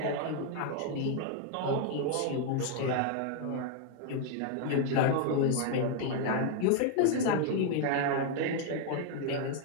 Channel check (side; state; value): both; different; correlation 0.00